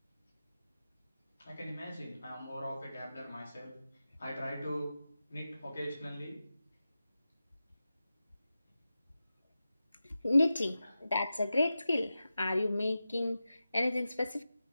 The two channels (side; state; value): both; inverted; correlation -0.93